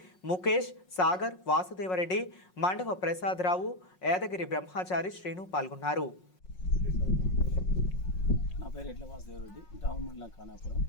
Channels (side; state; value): right; late; 5.5 ms